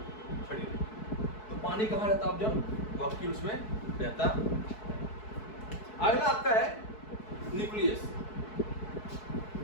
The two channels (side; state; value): right; late; 4.6 ms